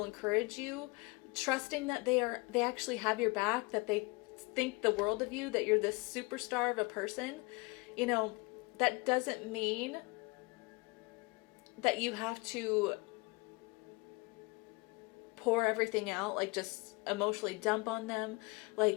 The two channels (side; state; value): right; quieter; 26.2 dB